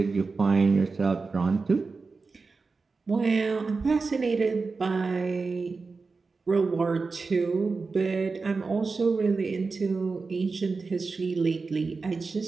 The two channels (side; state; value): left; quieter; 4.3 dB